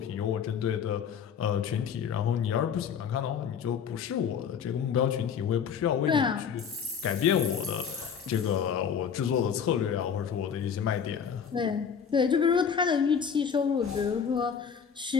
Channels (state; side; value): quieter; right; 7.2 dB